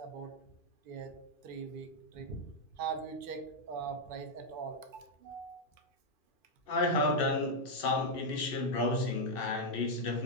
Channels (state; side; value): late; right; 2.6 ms